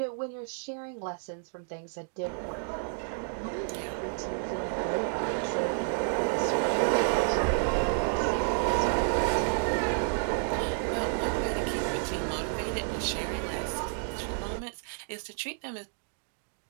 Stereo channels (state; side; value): silent; left; digital silence